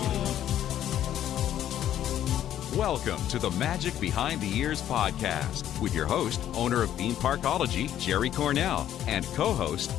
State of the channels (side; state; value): right; quieter; 11.3 dB